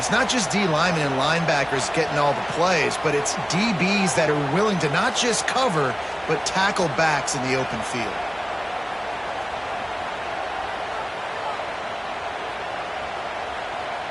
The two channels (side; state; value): both; identical; correlation 1.00